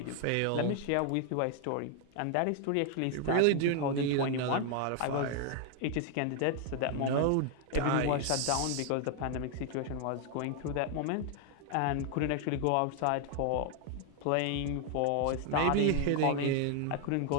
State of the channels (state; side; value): different; both; correlation 0.00